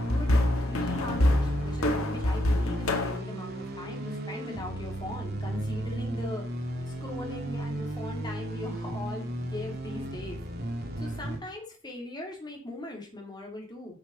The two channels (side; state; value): both; normal; correlation 0.76